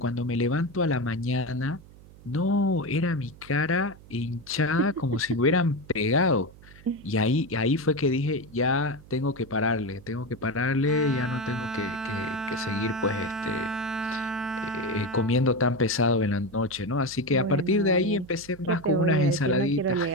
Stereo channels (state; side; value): noise; right; hum, 21 dB below the sound